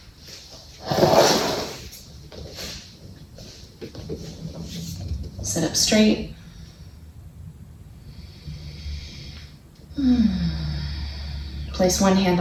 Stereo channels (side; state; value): both; identical; correlation 1.00